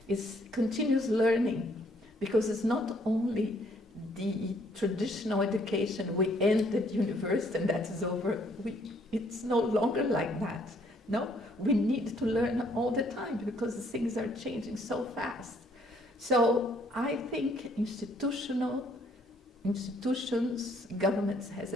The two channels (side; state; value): both; normal; correlation 0.66